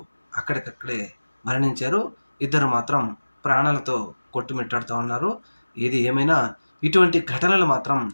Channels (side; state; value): both; inverted; correlation -1.00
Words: అక్కడికక్కడే మరణించారు. ఇద్దరు మాత్రం ప్రాణాలతో కొట్టుమిట్టాడుతూ ఉన్నారు. ఏది ఏమైనా ఇటువంటి ఘటనలు మాత్రం